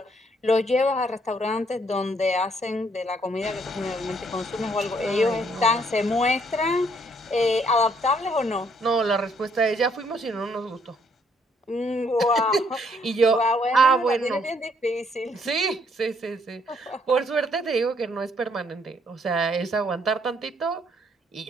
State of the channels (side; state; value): both; normal; correlation 0.68